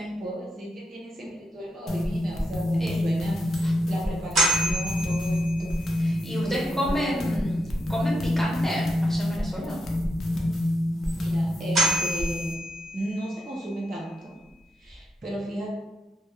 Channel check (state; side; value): normal; both; correlation 0.84